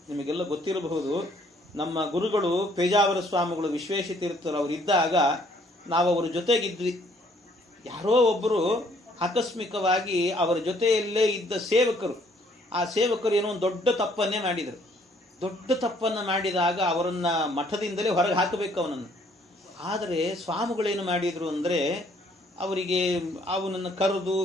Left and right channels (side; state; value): both; normal; correlation 0.63